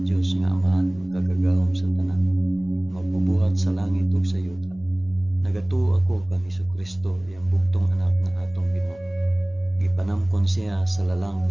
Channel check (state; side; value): noise; left; hum, 24 dB below the sound